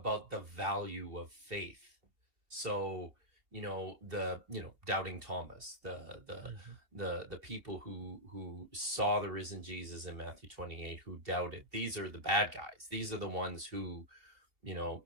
the value of faith. So, doubting Thomas, the people who saw the risen Jesus in Matthew 28, who doubted, these are the bad guys. These are the ones who,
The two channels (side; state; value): left; late; 2.8 ms